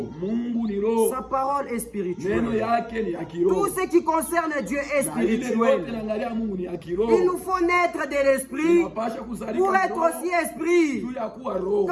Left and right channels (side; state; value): both; identical; correlation 1.00